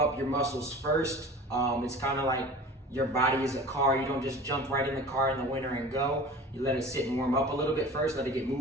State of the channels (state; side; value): normal; both; correlation 0.39